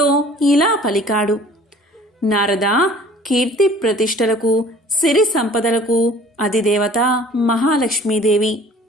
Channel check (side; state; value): both; normal; correlation 0.49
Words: ఇలా పలికాడు. నారద, కీర్తి ప్రతిష్టలకు, సిరి సంపదలకు అధిదేవత మహాలక్ష్మీదేవి.